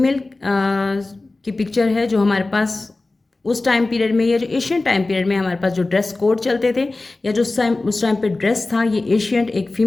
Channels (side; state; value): right; quieter; 3.2 dB